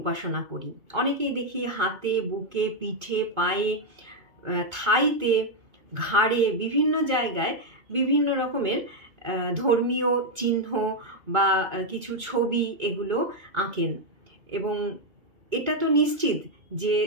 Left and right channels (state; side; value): late; left; 2.2 ms